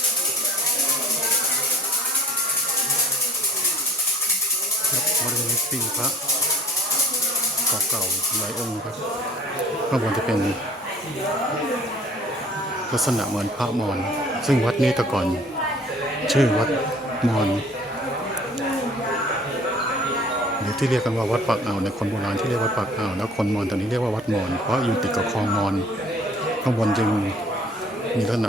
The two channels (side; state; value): both; normal; correlation 0.52